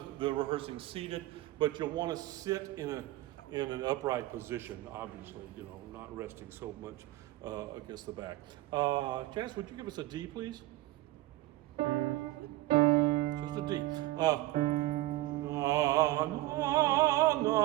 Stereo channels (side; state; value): left; quieter; 17.3 dB